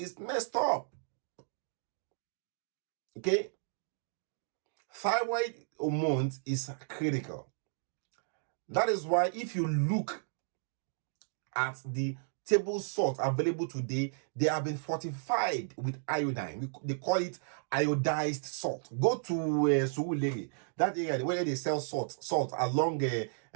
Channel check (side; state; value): left; silent; digital silence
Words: messed up. Okay? Thyroid hormones is critical. That is why if you look at the table salt available today, they have been fortified with iodine. They call it iodized salt. Go to Surulere, that area where they sell salt along Apapa